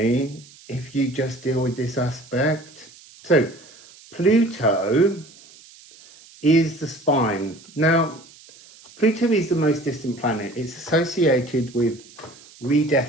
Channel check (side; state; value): right; noise; hiss, 23 dB below the sound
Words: if you just deal with this aspect. So Pluto is the spine. Now, Pluto is the most distant planet. It's associated with